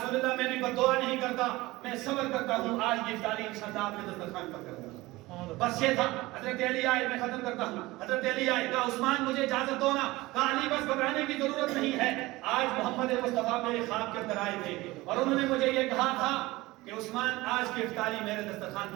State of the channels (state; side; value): quieter; left; 19.9 dB